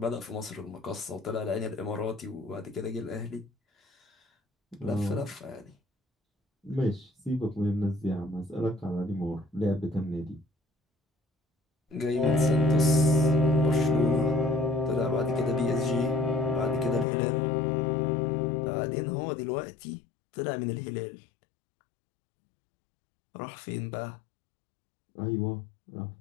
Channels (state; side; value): drops out; right; at 17.1 s